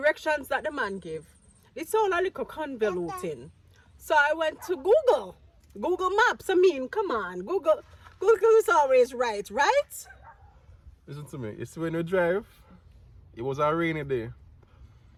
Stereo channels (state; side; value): identical; both; correlation 1.00